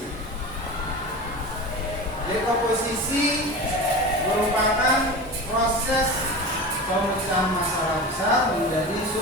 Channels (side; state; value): both; normal; correlation 0.30